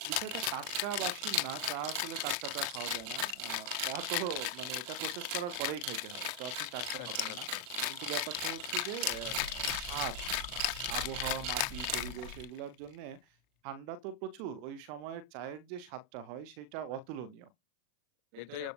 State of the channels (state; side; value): late; left; 40 ms